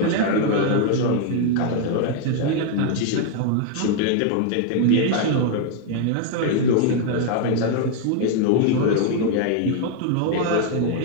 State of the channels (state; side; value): different; both; correlation 0.00